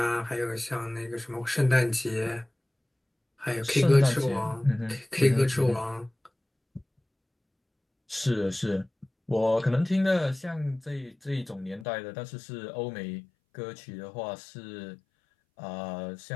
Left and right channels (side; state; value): right; drops out; at 11.9 s